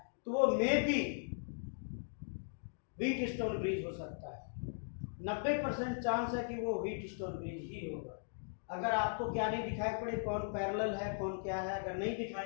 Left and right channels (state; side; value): silent; right; digital silence